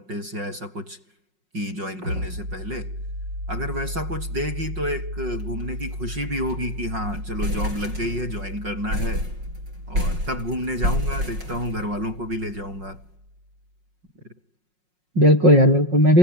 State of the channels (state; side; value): late; left; 5.5 ms